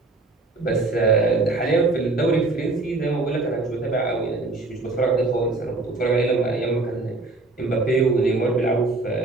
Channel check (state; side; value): quieter; left; 3.3 dB